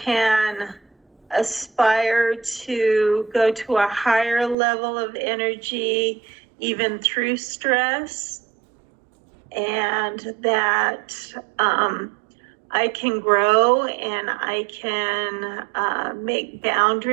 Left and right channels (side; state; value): left; drops out; at 4.5 s